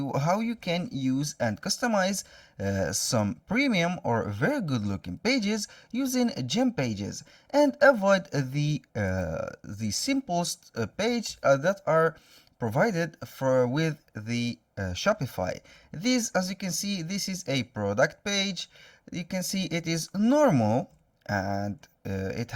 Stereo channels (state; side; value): identical; both; correlation 1.00